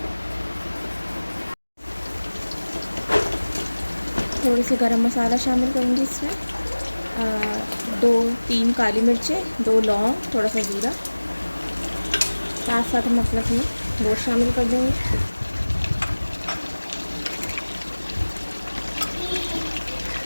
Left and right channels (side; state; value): both; inverted; correlation -1.00